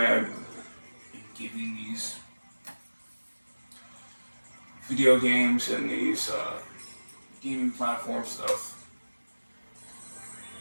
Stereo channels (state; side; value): inverted; both; correlation -1.00